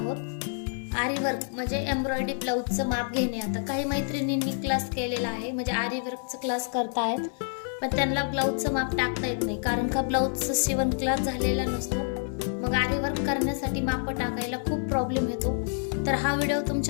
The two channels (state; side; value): silent; right; 57 dB below the other